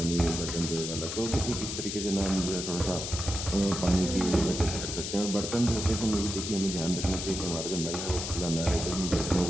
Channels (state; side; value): noise; left; hiss, 5 dB below the sound